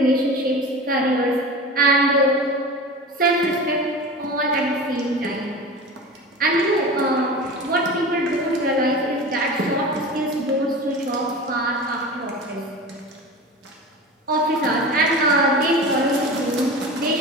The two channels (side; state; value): both; normal; correlation 0.32